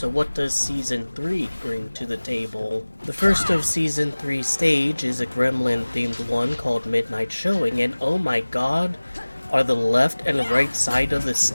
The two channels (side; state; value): both; inverted; correlation -1.00